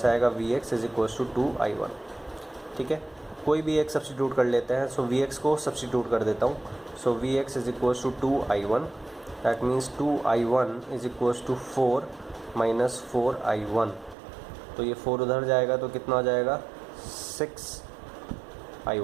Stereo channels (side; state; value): left; drops out; at 14.2 s